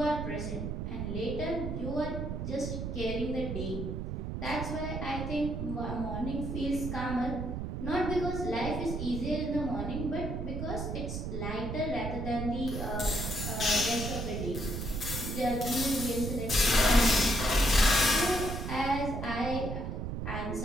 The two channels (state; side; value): noise; right; rumble, 4 dB below the sound